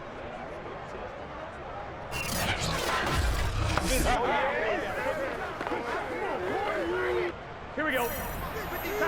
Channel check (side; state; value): both; identical; correlation 1.00